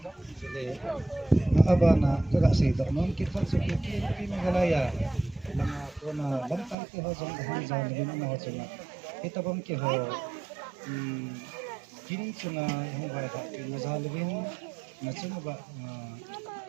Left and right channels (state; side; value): drops out; left; at 6.8 s